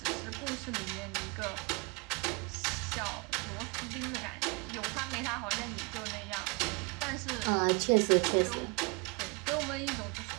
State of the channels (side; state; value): left; quieter; 30.1 dB